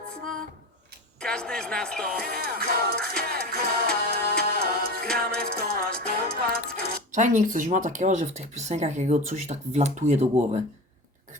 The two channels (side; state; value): both; normal; correlation 0.28